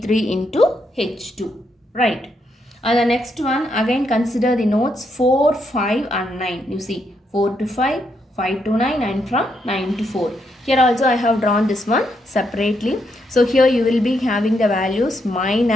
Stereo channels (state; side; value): normal; both; correlation 0.78